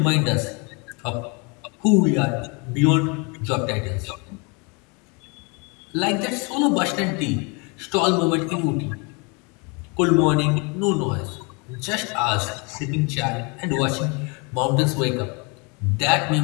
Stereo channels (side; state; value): right; quieter; 31.1 dB